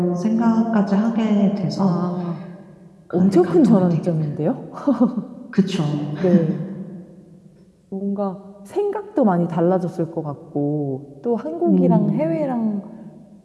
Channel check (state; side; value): identical; both; correlation 1.00